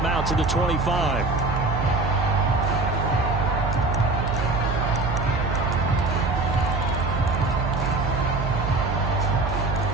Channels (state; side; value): noise; right; hum, 2 dB below the sound